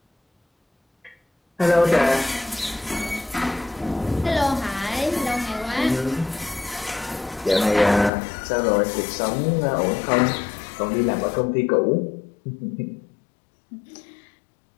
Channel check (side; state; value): right; drops out; at 8.1 s